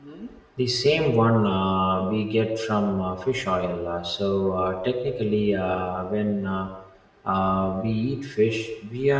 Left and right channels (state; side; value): identical; both; correlation 1.00